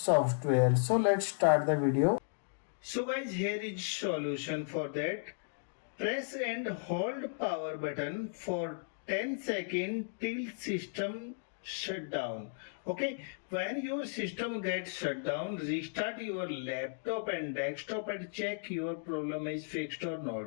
So let's start the video. So guys, here is solution for that. Press and hold power button for 10 seconds till system shut down. Okay, when your system gets shut down, restart your laptop and desktop and check your problem is fixed or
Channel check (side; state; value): right; silent; digital silence